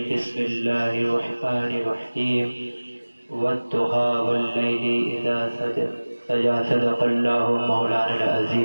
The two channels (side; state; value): both; inverted; correlation -1.00